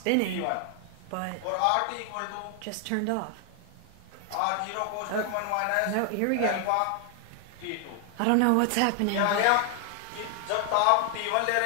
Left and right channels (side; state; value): both; different; correlation 0.00